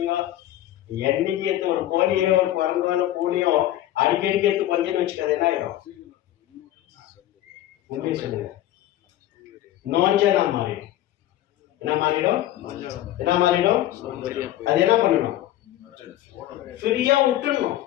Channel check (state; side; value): quieter; right; 13.7 dB